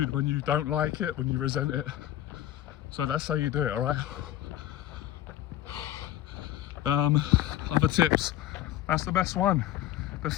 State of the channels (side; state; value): right; quieter; 13.1 dB